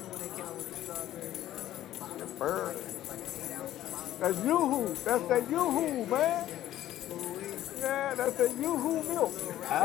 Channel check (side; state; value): right; quieter; 13.2 dB